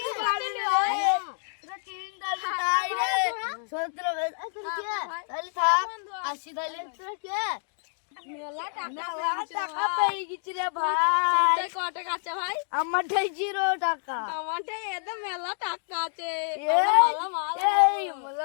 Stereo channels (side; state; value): right; silent; digital silence